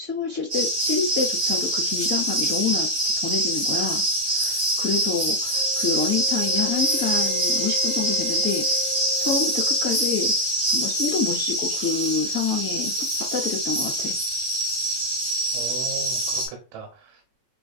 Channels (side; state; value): left; late; 9.0 ms